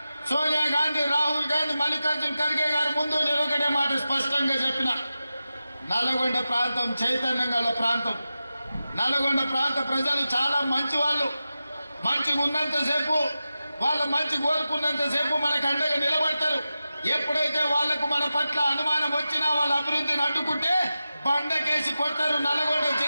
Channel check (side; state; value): both; inverted; correlation -0.93